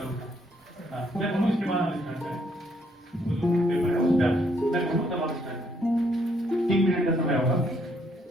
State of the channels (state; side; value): normal; both; correlation 0.70